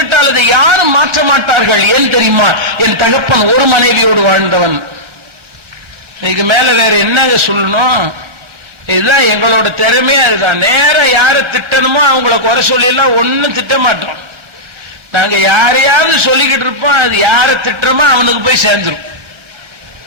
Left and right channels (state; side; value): late; left; 1.2 ms